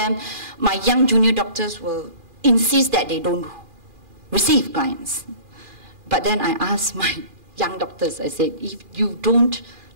my young junior doctors will insist that they don't receive clients. But then I asked my young doctors, I said, if you don't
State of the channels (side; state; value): left; late; 2.4 ms